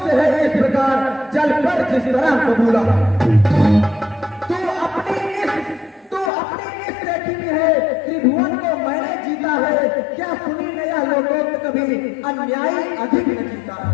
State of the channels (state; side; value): drops out; right; at 6.3 s